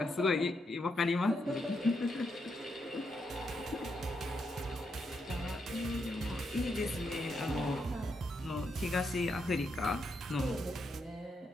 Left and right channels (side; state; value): both; normal; correlation 0.81